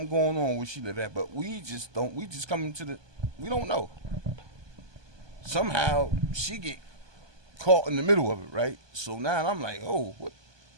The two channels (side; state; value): left; late; 1.2 ms